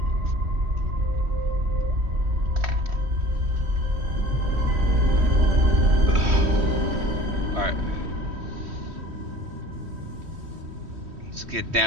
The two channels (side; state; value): left; late; 3.1 ms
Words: Alright. Let's get